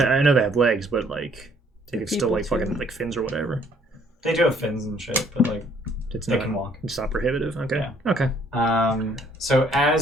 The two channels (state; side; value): normal; both; correlation 0.63